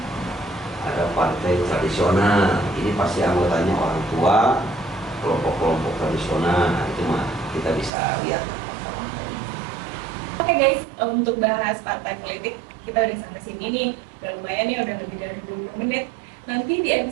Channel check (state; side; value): drops out; left; at 7.9 s